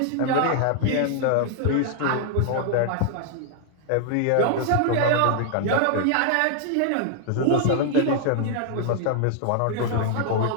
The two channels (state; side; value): different; both; correlation 0.00